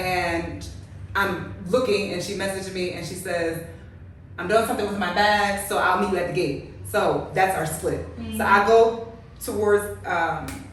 I'm looking, and she messaged me, and she says, I'm doing something with my bag, so I'll meet you at the gate. So that's our split. Mm-hmm. So I go towards,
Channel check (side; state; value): both; identical; correlation 1.00